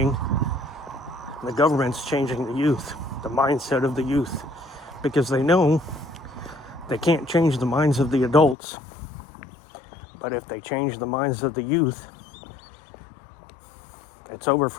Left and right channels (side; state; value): right; drops out; at 8.6 s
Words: the government's changing the youth, the mindset of the youth. Because they know they can't change the minds of the adults. But if they change the minds of the youth, it's over